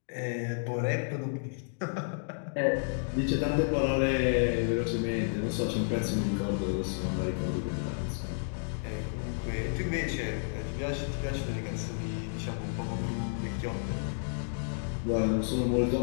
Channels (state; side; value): silent; right; digital silence